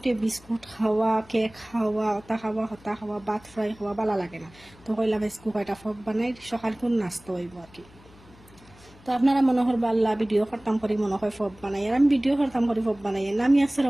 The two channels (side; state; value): left; noise; hum, 25 dB below the sound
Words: বিস্কুট খাওয়া, কেক খাওয়া, হতা খাওয়া, ভাত ফ্রাই খাওয়া ভালো লাগে না। তো কইলাম আজকে কয়টা ফব বানাই সকাল কোন নাস্তা হইব আর কি। তো আপনারা মনে করবা আল্লাহ ভিডিও করতাম করি মনে হয় ফব বানাই, আর আমি ভিডিও করতাম করি ফব বানাই না, আমি